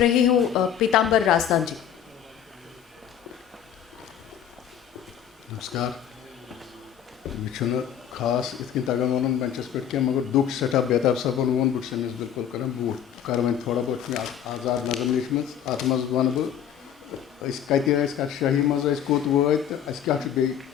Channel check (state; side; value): quieter; right; 9.3 dB